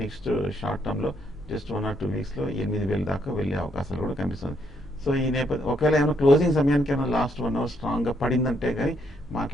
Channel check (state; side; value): normal; both; correlation 0.73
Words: నెక్స్ట్ షార్ట్ టర్మ్ లో జస్ట్ 1 or 2 weeks లో 8,000 దాకా వెళ్ళే అవకాశాలు కూడా కనిపిస్తుంది. సో ఈ నేపథ్యం ఒకవేళ ఏమైనా క్లోజింగ్ సమయానికి ఏమైనా లాస్ట్ 1 hour స్ట్రాంగ్ గా పడిందంటే కానీ